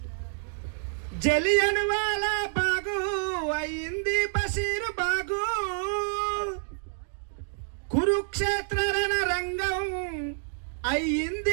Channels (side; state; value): left; silent; digital silence